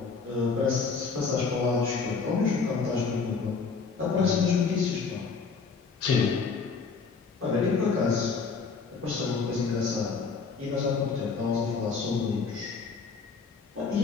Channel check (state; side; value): quieter; right; 5.0 dB